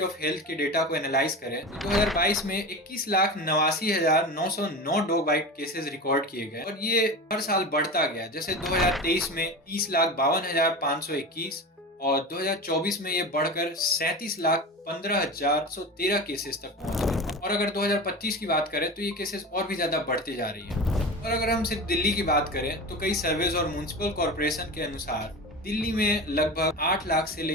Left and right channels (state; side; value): normal; both; correlation 0.28